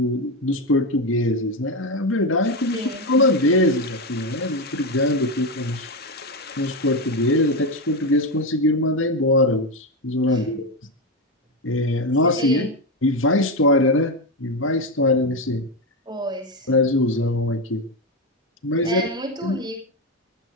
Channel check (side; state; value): both; normal; correlation 0.11